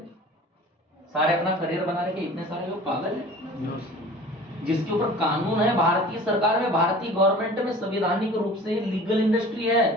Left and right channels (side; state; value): both; normal; correlation 0.43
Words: सारे अपना करियर बना रहे, इतने सारे लोग पागल है? जिसके ऊपर कानून है, भारतीय सरकार में, भारतीय गवर्नमेंट में संवैधानिक रूप से लीगल इंडस्ट्री है।